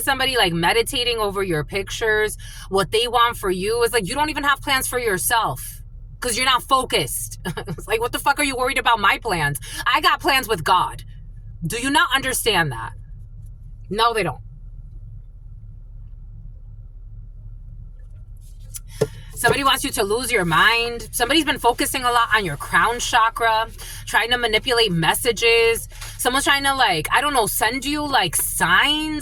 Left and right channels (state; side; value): identical; both; correlation 1.00